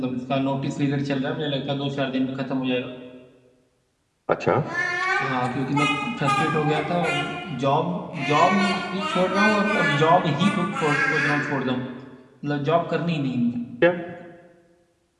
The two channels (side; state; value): both; identical; correlation 1.00